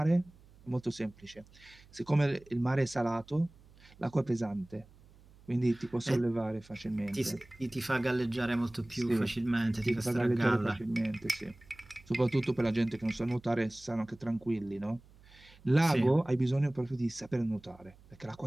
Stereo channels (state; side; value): noise; right; hum, 25 dB below the sound